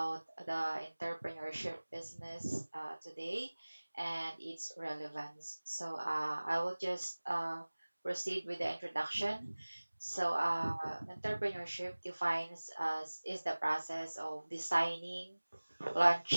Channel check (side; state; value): both; inverted; correlation -1.00